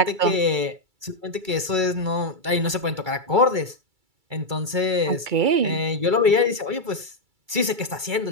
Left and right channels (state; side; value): late; left; 2.3 ms